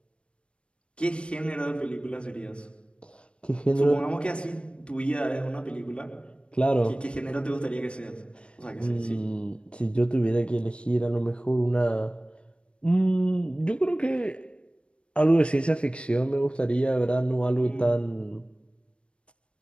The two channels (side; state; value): right; late; 0.058 ms